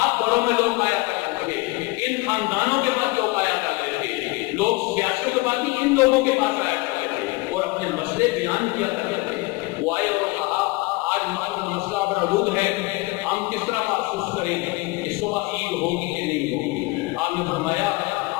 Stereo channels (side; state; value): right; quieter; 23.5 dB